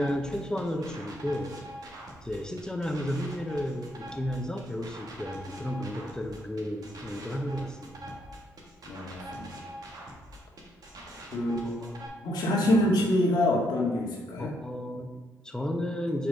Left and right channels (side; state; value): both; normal; correlation 0.75